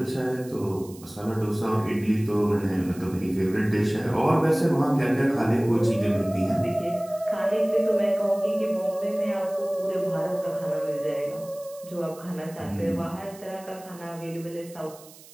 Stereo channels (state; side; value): noise; right; hiss, 21 dB below the sound